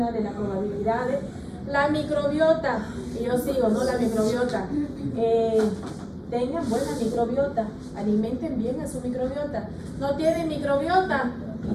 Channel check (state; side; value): identical; both; correlation 1.00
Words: de las probabilidades. La microbiota, y yo sigo, ¿no? La microbiota. Tengan buena microbiota, alimenten bien a su microbiota. No tienen microbiota,